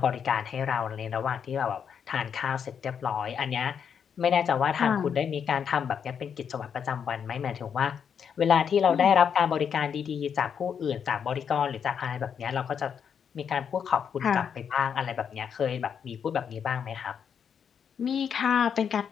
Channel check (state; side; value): quieter; right; 7.4 dB